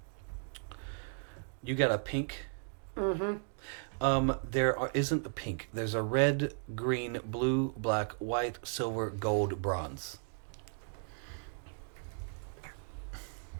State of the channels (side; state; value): left; silent; 54 dB below the other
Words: You got a pink. There isn't a pink. There's a red, green, blue, black, white, silver, gold, bronze.